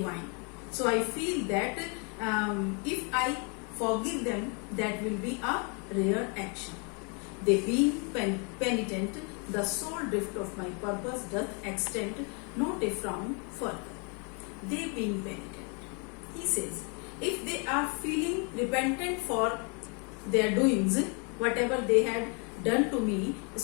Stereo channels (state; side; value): quieter; right; 35.9 dB